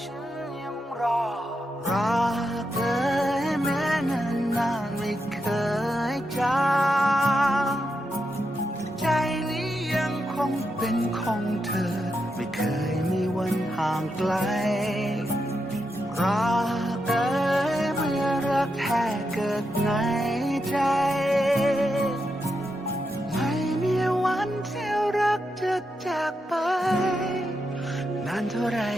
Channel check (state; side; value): normal; both; correlation 0.85